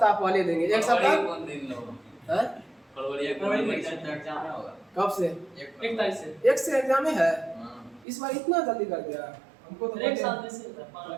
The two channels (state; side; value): drops out; left; at 8.1 s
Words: पहले देंगे। 1 सप्ताह फरवरी में एग्जाम होगा। कब से? 1 तारीख से। 1 से एग्जाम है। इस बार इतना जल्दी कर दिया हमको तो। 1 साल से